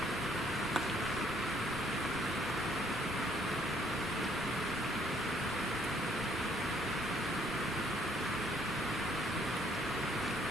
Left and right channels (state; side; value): normal; both; correlation 0.65